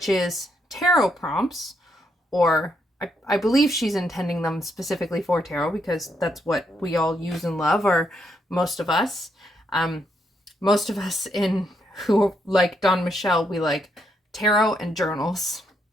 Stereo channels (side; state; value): both; normal; correlation 0.77